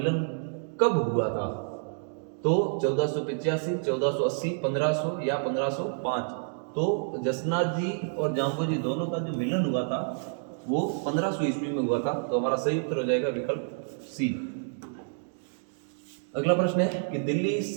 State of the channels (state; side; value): silent; left; digital silence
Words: कब हुआ था? तो 1485, 1480, 1500 या 1505? तो जसनाथ जी और जाम्बो जी दोनों का जो मिलन हुआ था वो 1500 ईस्वी में हुआ था। तो हमारा सही उत्तर हो जाएगा विकल्प सी। अगला प्रश्न है कि दिल्ली